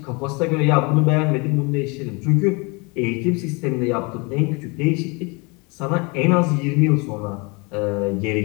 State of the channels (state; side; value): quieter; right; 29.2 dB